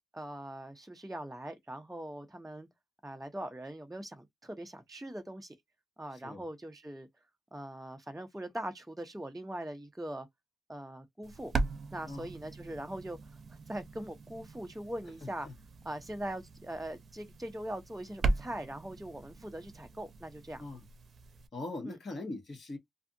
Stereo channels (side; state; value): both; normal; correlation 0.86